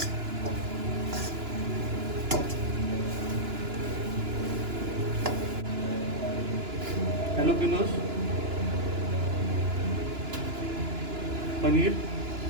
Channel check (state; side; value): late; left; 2.9 ms